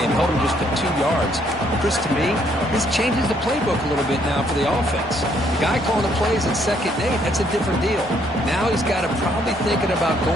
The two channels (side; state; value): both; normal; correlation 0.69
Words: held him just to 2 yards. Chris, to me, this changes the playbook a little bit now for the offense. The guy calling the plays at 2nd and 8, that's a different deal. Now he's got to probably thinking about